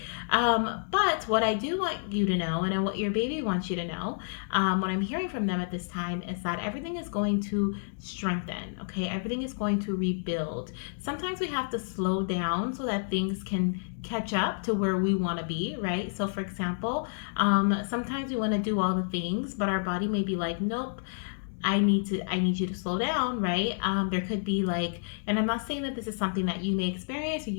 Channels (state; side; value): silent; right; 58 dB below the other